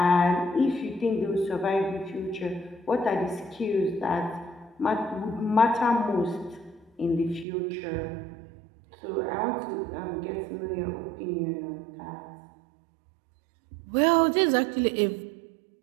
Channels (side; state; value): left; drops out; at 7.5 s